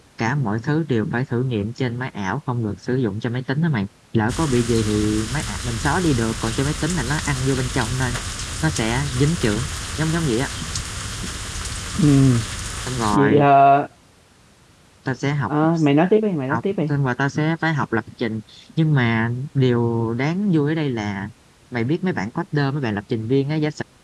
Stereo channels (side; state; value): both; identical; correlation 1.00